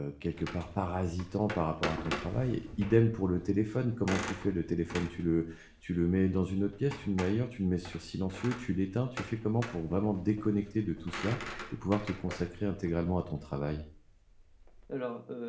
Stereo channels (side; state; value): both; identical; correlation 1.00